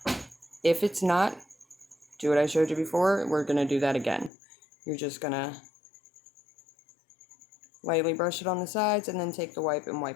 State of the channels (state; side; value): drops out; right; at 4.3 s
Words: If it's not, do what I showed you before. We're going to do that again. You're just going to lightly brush it on the sides and then take the wipe and